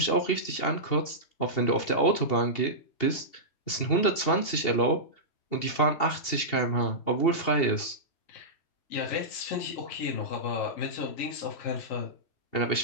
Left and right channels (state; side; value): late; right; 2.7 ms